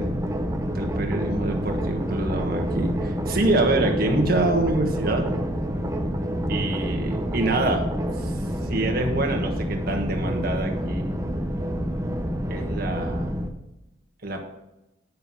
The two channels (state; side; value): normal; both; correlation 0.59